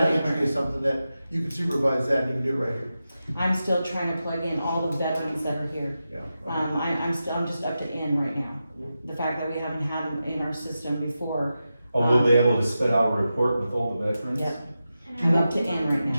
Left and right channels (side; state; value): both; inverted; correlation -0.91